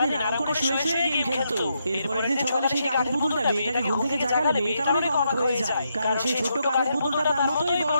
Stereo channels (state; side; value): inverted; both; correlation -0.80